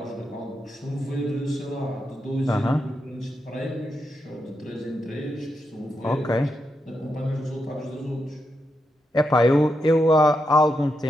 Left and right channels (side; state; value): both; normal; correlation 0.84